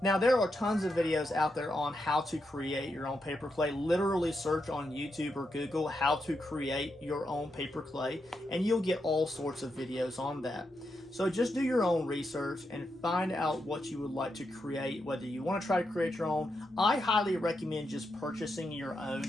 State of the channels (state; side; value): normal; both; correlation 0.84